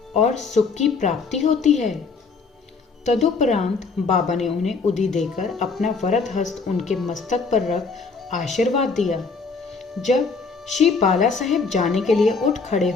और सुख की प्राप्ति होती है। तदुपरांत बाबा ने उन्हें उदी देकर अपना वरद हस्त उनके मस्तक पर रख आशीर्वाद दिया। जब श्री बाला साहेब जाने के लिए उठ खड़े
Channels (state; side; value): quieter; right; 4.7 dB